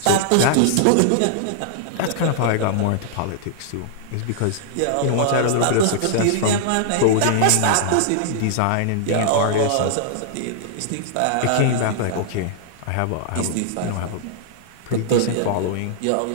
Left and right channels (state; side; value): different; both; correlation -0.01